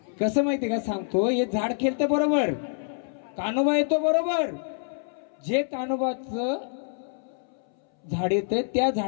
कसं माहितीये का सांगतो, हे झाड खेळतं बरोबर, कानोबा येतो बरोबर. जे कानोबाचं झाड येतंय त्या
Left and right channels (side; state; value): right; silent; 60 dB below the other